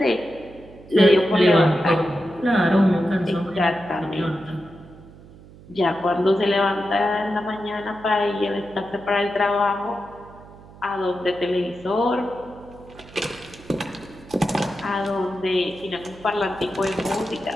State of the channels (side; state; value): right; noise; hum, 21 dB below the sound